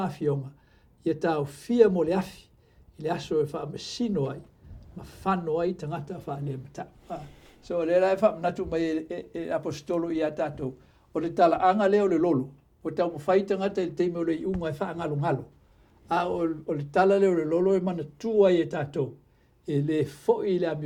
a fionga. Ia tau fia mo le afi. I le aso e wha masino ai. Ma whano ai tangata wha le mata. So le lai wha amnatu mai e apostolo I a tātou. O le tala anga leo le lolo. O tau mawhai tangata I teime o le iunga e wha ngalo ngalo. O le tala leo le lolo e mana tua I e tātou. E le foi I le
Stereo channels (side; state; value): both; identical; correlation 1.00